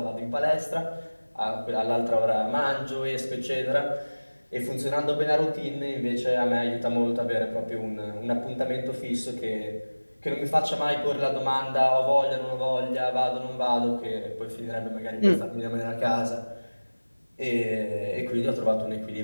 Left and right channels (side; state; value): both; inverted; correlation -1.00